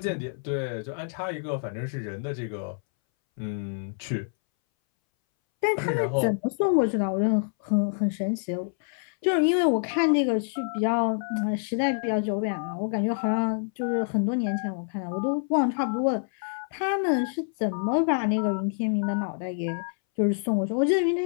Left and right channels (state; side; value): silent; right; 60 dB below the other